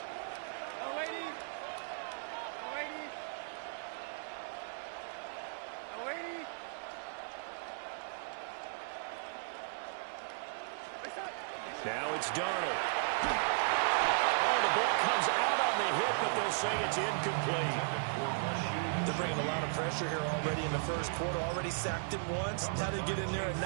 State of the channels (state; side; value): silent; left; 54 dB below the other